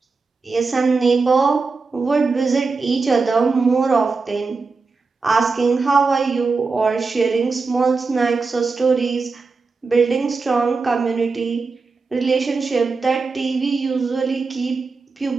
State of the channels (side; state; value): left; quieter; 4.3 dB